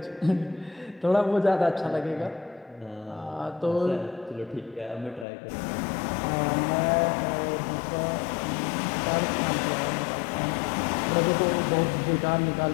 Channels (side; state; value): right; drops out; at 5.2 s